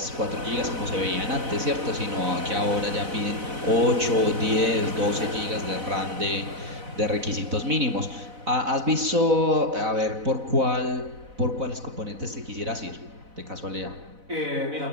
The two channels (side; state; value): left; late; 4.0 ms